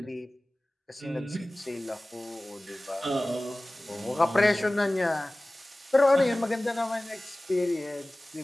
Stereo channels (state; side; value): normal; both; correlation 0.98